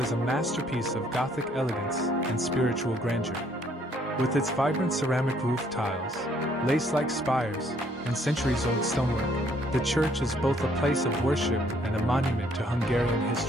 a masterpiece of Gothic elegance and spiritual grandeur. With its vibrant ceramic roof tiles, lace-like spires, and centuries-old stonework, the church is both a place of worship and a monument to Hungarian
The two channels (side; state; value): both; normal; correlation 0.65